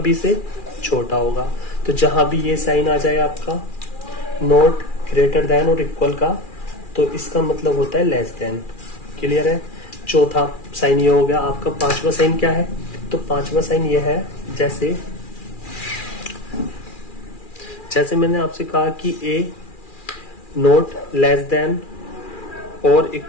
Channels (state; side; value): late; right; 2.4 ms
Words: से छोटा होगा। तो जहां भी ये साइन आ जाए आपका नॉट ग्रेटर देन और इक्वल का, तो इसका मतलब होता है लेस देन। क्लियर है? चौथा साइन ये हो गया आपका। पांचवा साइन क्या है? तो पांचवा साइन ये है, जैसे मैंने आपसे कहा कि a नॉट लेस देन और